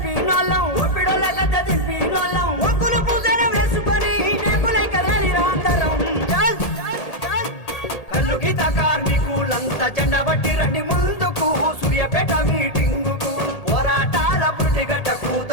ఒక్కులు పూజన వేసుకొని నేపులై కదలిరా అందరం కల్లు గీత కార్మికులంతా జెండా పట్టి రండి ముందుకు సూర్యాపేట మీటింగుకు పోరాటాల పురిటిగడ్డకు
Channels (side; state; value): right; late; 1.8 ms